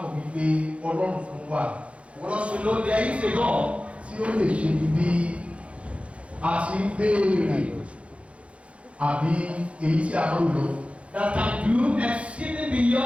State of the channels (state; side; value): late; left; 0.062 ms